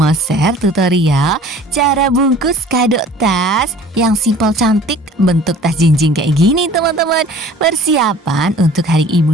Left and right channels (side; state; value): both; normal; correlation 0.48